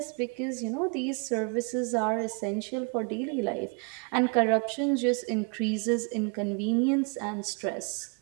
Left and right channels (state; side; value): quieter; left; 36.2 dB